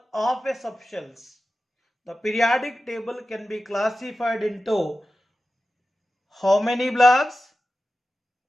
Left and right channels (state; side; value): normal; both; correlation 0.94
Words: of a substance, the periodic table can be classified into how many blocks?